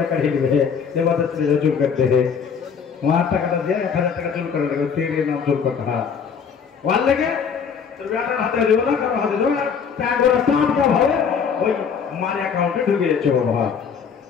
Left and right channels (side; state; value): right; quieter; 6.6 dB